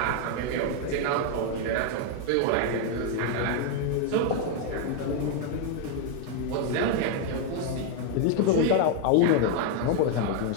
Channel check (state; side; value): different; both; correlation 0.00